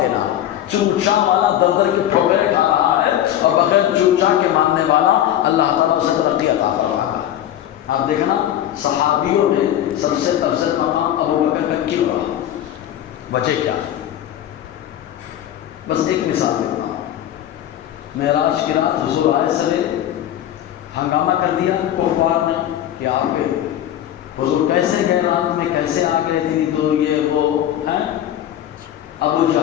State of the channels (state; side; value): quieter; right; 11.6 dB